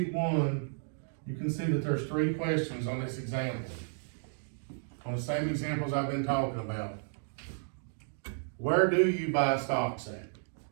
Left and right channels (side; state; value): left; silent; digital silence